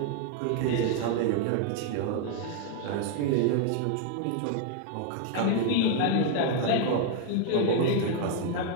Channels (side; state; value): both; different; correlation 0.00